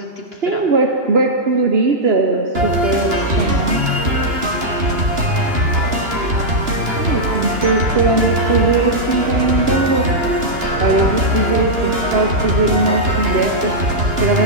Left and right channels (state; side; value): late; left; 2.9 ms